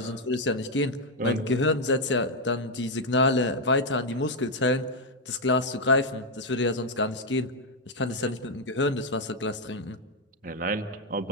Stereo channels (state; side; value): normal; both; correlation 0.02